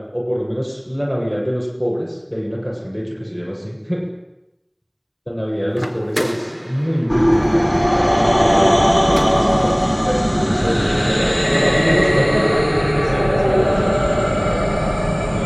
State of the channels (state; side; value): identical; both; correlation 1.00